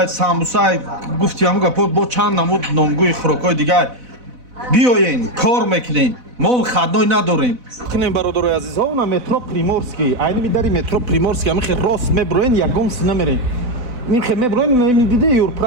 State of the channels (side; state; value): left; late; 4.0 ms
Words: самбусай, гуфтиҳаму гапо бо чанд намуд номгӯи хӯрокҳои дигаи. Биёен, кор мекунем. Мо хадной надорем. Кунем бародарои азизҳо, на метро Приморский. Айни дари метро Приморский, амихе рост меброен, ягон сина мерен. Михе меброен, ними диде